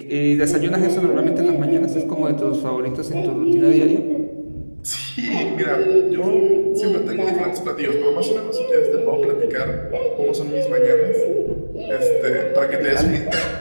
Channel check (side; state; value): both; inverted; correlation -1.00